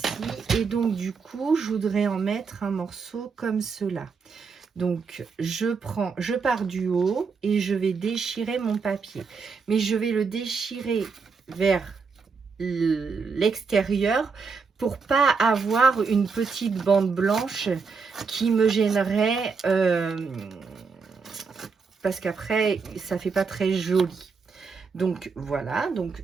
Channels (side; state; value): left; quieter; 5.1 dB